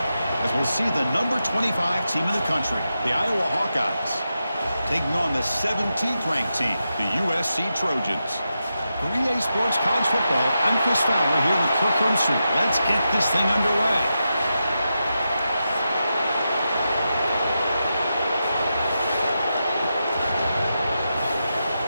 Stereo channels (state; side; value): inverted; both; correlation -0.88